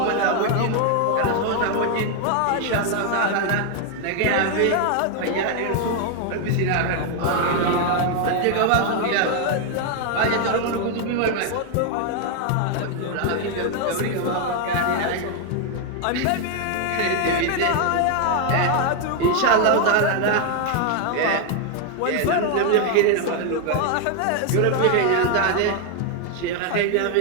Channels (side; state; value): both; different; correlation 0.01